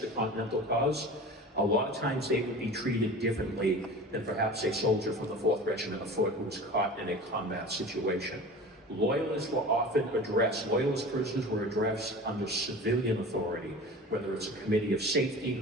the Continental cause, a lot of times they would be treated differently than perhaps a soldier from the 4th Regiment of Foot who was caught in a combat situation. Loyalists were often addressed, Loyalist prisoners were addressed under civilian authority, whether it's a committee of safety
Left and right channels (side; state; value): both; normal; correlation 0.37